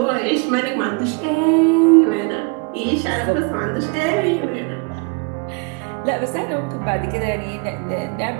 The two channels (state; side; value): quieter; left; 32.0 dB